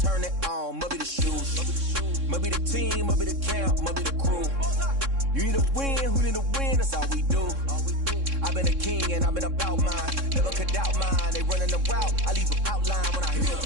turn it on, must be the shoes, must be the team, must be the camp, must be the crew. You need a win, who need a win, that's all we do. I've been a king and I've been about mine, never could doubt mine. They running the route, I leave them outline when I hear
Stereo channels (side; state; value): left; late; 3.6 ms